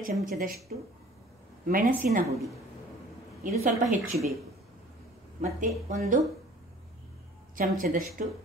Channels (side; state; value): both; normal; correlation 0.49